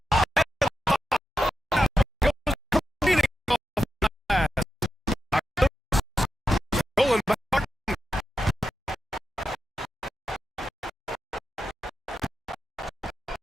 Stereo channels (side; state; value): both; normal; correlation 0.89